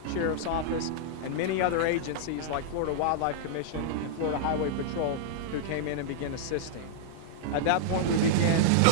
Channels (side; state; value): both; different; correlation -0.02